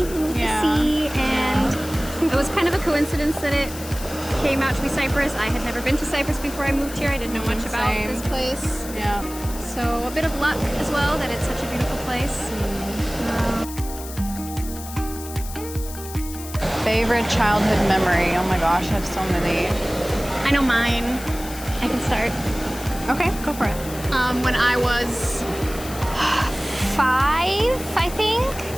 the sea, and it was kind of a coincidence that it came out to be Cyprus. I had never been to Cyprus before I moved here. I didn't know much about this place. Yeah. So a bit of luck as well that it's such a beautiful place. Favorite childhood memory? Oh my gosh, I have so many. I know mine. I can start. Okay, go for it. When I was 5, I think,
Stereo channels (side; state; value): left; noise; hiss, 13 dB below the sound